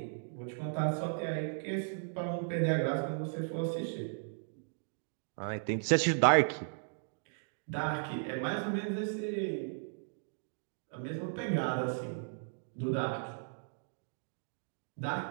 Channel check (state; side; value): silent; left; digital silence